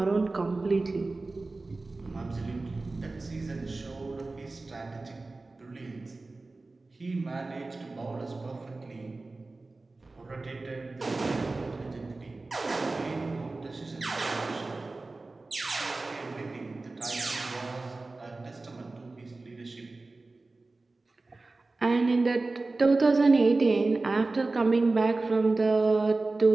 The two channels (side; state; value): left; quieter; 3.3 dB